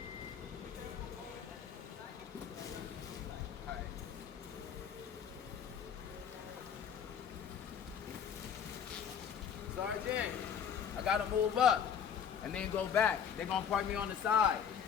Sergeant, I gotta move up and then go back. They're gonna park me on the side.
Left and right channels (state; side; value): quieter; right; 7.9 dB